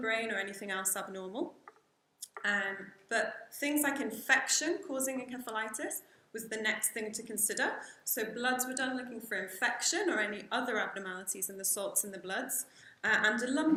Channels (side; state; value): both; identical; correlation 1.00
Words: or anything else abnormal. But things like infection causing encephalitis was the next thing to consider. So bloods were done looking for infection or any other abnormalities in the salts in the bloods, and a